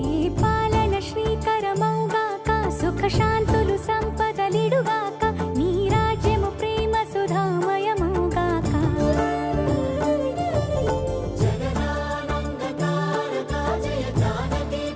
పాలన శ్రీకరమౌగాక సుఖ శాంతులు సంపదలిడుగా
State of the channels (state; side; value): identical; both; correlation 1.00